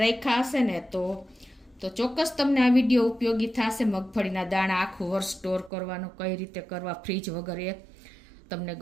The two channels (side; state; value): left; drops out; at 5.7 s